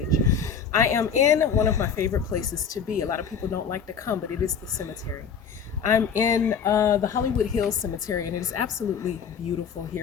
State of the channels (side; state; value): right; quieter; 6.6 dB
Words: I am in one of my favorite places to be. A lot of people don't like to come, but it is the cemetery. I'm in the Hollywood Hills Cemetery, and it is absolutely beautiful